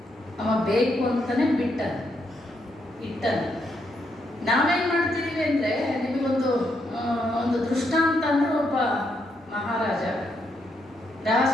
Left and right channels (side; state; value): both; normal; correlation 0.78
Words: ಅವ ಬೇಕು ಅಂತಾನೆ ಬಿಟ್ಟನು, ಇಟ್ಟನು. ನಾವೇನ್ ಮಾಡ್ತಿದೀವಿ ಅಂದ್ರೆ, ನಿಮಗೊಂದು ಒಂದು ದೃಷ್ಟಾಂತ ಅಂದ್ರೆ, ಒಬ್ಬ ಮಹಾರಾಜ, ರಾಜ